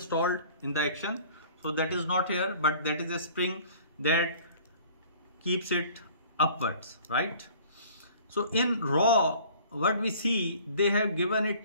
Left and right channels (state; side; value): inverted; both; correlation -0.50